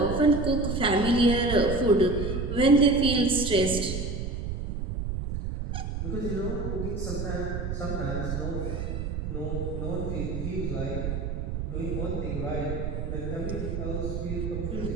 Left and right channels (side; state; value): right; noise; rumble, 3 dB below the sound